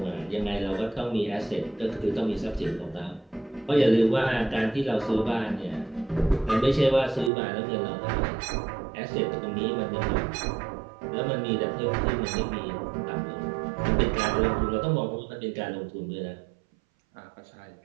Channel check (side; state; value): left; drops out; at 7.3 s